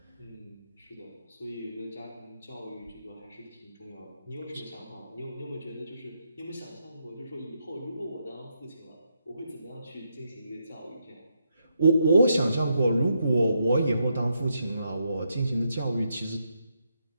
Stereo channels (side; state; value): both; inverted; correlation -0.80